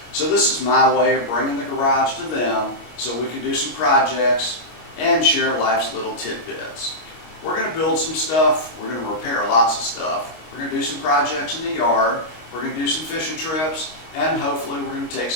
So this is my way of bringing the garage to them so we can do some projects and share life's little tidbits. We're going to build some stuff, we're going to repair lots of stuff, we're going to do some projects in the yard, we're going to do some fishing trips, and hopefully we're going to take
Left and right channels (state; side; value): late; right; 25 ms